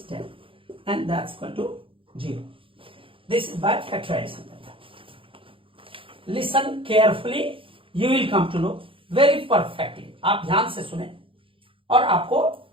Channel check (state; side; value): late; left; 0.26 ms